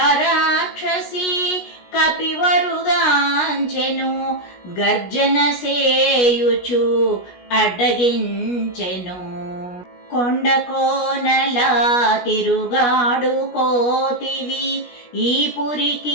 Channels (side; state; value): right; late; 17 ms